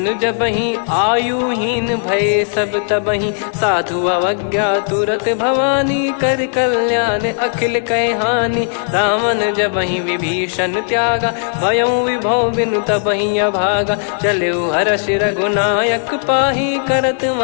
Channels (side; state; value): right; silent; digital silence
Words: जबहि आयुहीन भय सब तबहि साधु अवज्ञा तुरत भवानी कर कल्याण अखिल कह हानि रावण जबहि विभीषण त्यागा भयउ विभव बिनु तबहि अभागा चलऊ हर्ष रघुनायक पाही करत